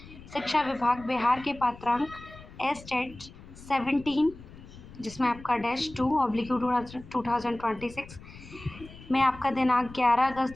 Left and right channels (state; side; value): noise; left; rumble, 18 dB below the sound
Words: विभाग बिहार के पात्रांक एस्टेट 17 जिसमें आपका -2/2026 में आपका दिनांक 11 अगस्त